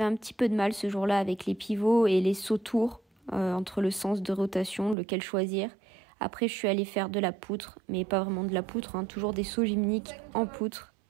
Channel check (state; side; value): drops out; left; at 5.0 s